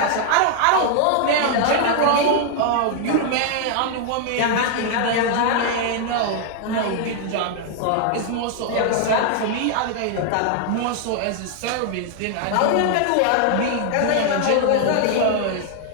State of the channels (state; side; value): different; both; correlation 0.00